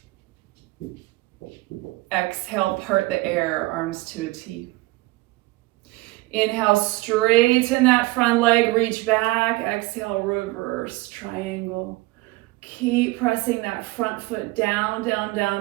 Exhale, part the air, arms to a T. Inhale, straighten that front leg, reach back. Exhale, reverse triangle. Keep pressing that front foot down, down,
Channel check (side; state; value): left; quieter; 21.2 dB